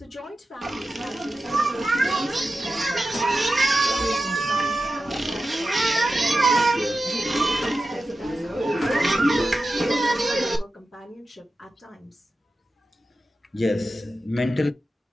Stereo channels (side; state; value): both; normal; correlation 0.92